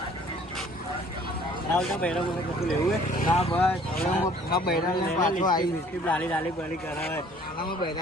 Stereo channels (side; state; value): both; normal; correlation 0.55